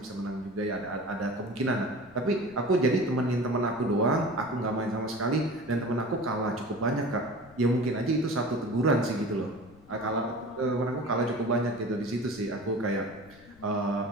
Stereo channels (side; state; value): left; noise; rumble, 25 dB below the sound